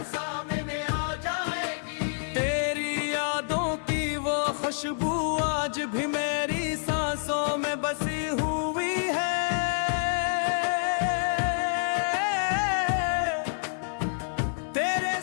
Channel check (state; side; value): silent; right; 59 dB below the other